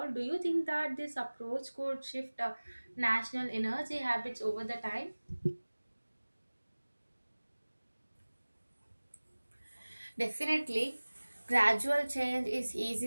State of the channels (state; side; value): inverted; both; correlation -1.00